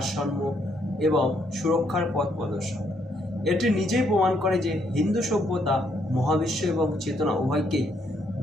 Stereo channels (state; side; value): normal; both; correlation 0.72